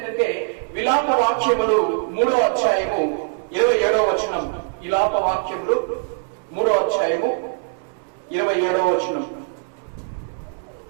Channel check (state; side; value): silent; left; 64 dB below the other